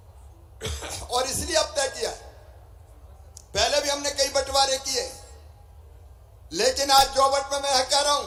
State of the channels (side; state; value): both; identical; correlation 1.00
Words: और इसलिए अब तय किया, पहले भी हमने कई बंटवारे किए, लेकिन आज जोबट में मैं कह रहा